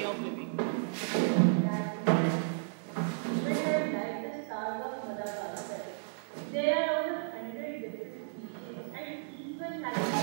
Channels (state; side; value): silent; left; digital silence